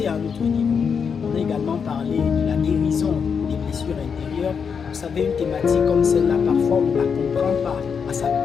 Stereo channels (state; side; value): quieter; right; 6.4 dB